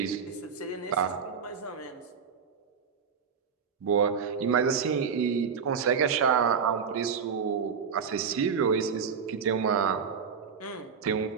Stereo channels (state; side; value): quieter; left; 6.4 dB